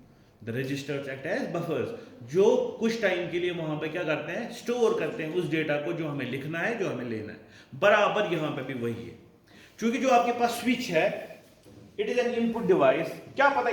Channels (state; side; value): identical; both; correlation 1.00